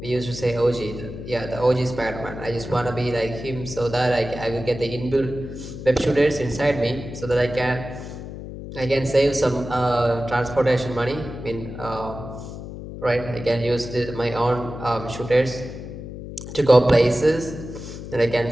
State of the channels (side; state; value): left; noise; hum, 10 dB below the sound